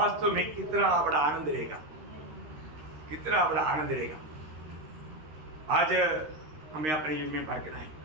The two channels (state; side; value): late; left; 13 ms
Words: में कितना बड़ा आनंद रहेगा, कितना बड़ा आनंद रहेगा। आज हमें अपने जीवन में पार है